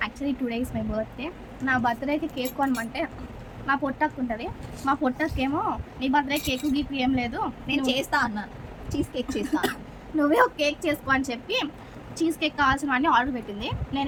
Actually today is my birthday. నా బర్త్డేకి కేక్ కొనమంటే మా పొట్టకు ఉంటుంది. మా పొట్టకేమో నీ బర్త్డే కేక్ గీక్ ఏం లేదు, నేను చేస్తా అన్నాను, చీజ్ కేక్ చేస్తా. నువ్వే ఒక కేక్ చేసుకో అని చెప్పి చీజ్ కేక్ కావాల్సినవన్నీ ఆర్డర్ పెట్టింది. నేను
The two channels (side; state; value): both; identical; correlation 1.00